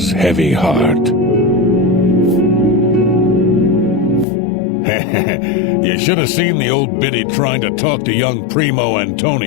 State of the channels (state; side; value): drops out; right; at 4.2 s